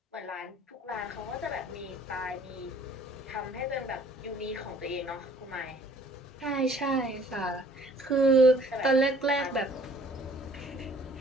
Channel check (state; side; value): normal; both; correlation 0.56